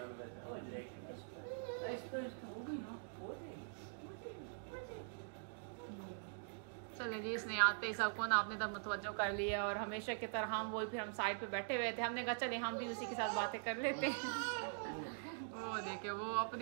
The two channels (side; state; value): left; silent; digital silence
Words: पहचान। चले जी, इसने आते ही सबको ना अपने तरफ मुतवज्जो कर लिया और हमेशा की तरह हम वही फिर हम साइड पे बैठे हुए थे। हमने कहा चले हम भी उसी के साथ बातें कर लेते हैं। वो देखे वो